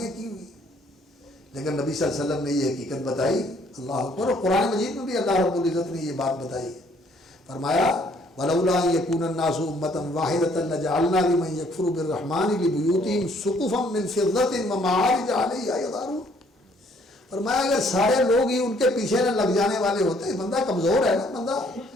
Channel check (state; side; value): normal; both; correlation 0.63